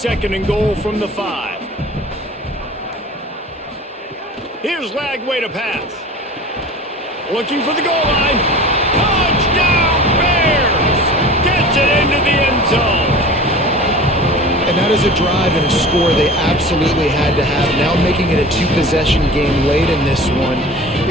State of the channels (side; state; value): both; normal; correlation 0.38